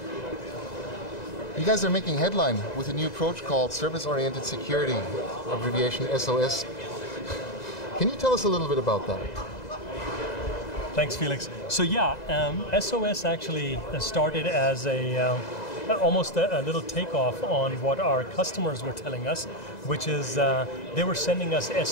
You guys are making headline with a new approach called Service-Oriented Security, abbreviation SOS. Can you tell us a little bit about that? Thanks, Felix. So yeah, SOS actually started as almost a little takeoff on what our customers were telling us, which is they were sending us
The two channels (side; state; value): right; late; 2.0 ms